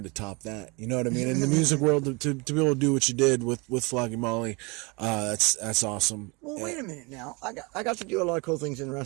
to top that. You know what I mean? In the music world, to be able to do what you did with Flogging Molly, that's awesome. Well, wait a minute now. I got to do a lot of cool things in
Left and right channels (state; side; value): quieter; left; 28.4 dB